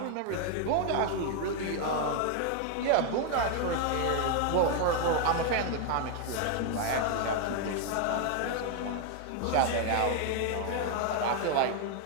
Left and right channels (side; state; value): both; different; correlation 0.00